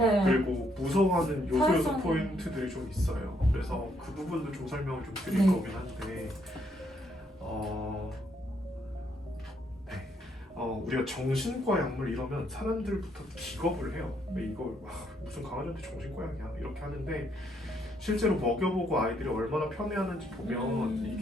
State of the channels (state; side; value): normal; both; correlation 0.72